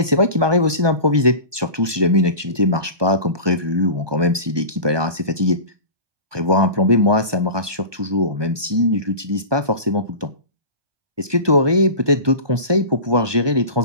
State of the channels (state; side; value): late; left; 1.2 ms